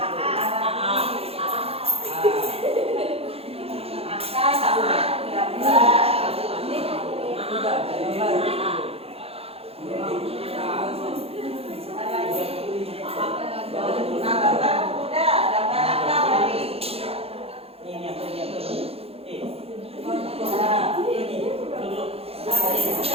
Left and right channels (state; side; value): late; left; 0.29 ms